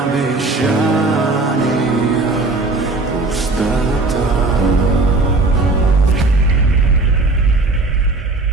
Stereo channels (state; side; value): quieter; left; 3.3 dB